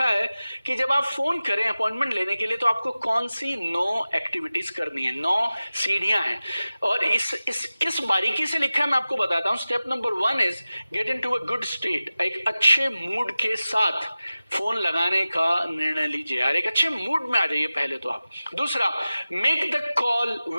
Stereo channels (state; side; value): inverted; both; correlation -0.96